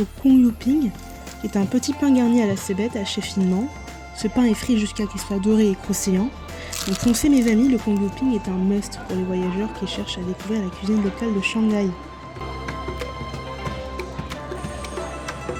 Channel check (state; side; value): identical; both; correlation 1.00